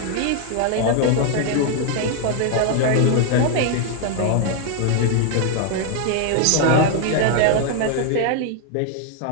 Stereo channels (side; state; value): both; different; correlation 0.00